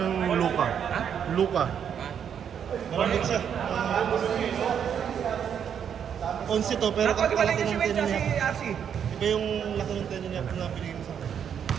Luka. Luka. Maramit siya. 11 to, pero kalaki ng tenyo niya. Iba yung laki ng tenyo niya na pinigil mo sa akin.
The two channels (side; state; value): left; quieter; 8.2 dB